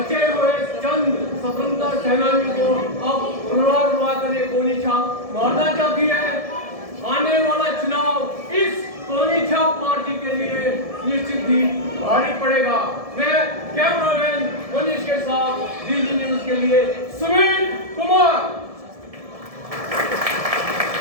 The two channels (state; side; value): late; left; 1.7 ms